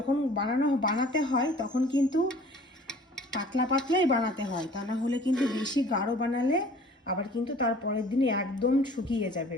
বানাতে হয় তখন কিন্তু পাতলা পাতলাই বানাতে হয়, তা না হলে কিন্তু বেশি গাঢ় বানালে আবার কিন্তু তার পরের দিনে একদম শুকিয়ে যাবে।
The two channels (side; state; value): both; normal; correlation 0.50